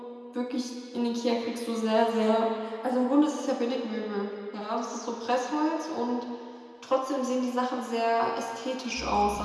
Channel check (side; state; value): both; identical; correlation 1.00